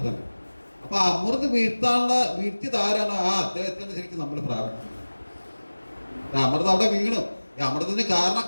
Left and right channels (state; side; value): inverted; both; correlation -1.00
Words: തന്നെ. അപ്പൊ അമൃത് വീഴ്ത്തിയത് ആരാണ്? ആ അദ്ദേഹത്തിന് ശരിക്കും നമ്മൾ പ്രാപിക്കുന്നത്. അമൃത് അവിടെ വീണു. ഈ അമൃതത്തിന്